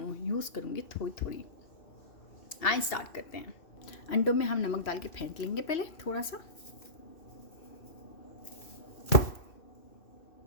यूज़ करूँगी थोड़ी थोड़ी। आइए स्टार्ट करते हैं। अंडों में हम नमक डाल के फेंट लेंगे पहले थोड़ा सा।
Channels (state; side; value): late; right; 2.6 ms